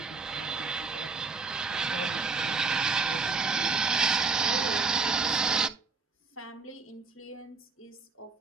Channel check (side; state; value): left; quieter; 4.6 dB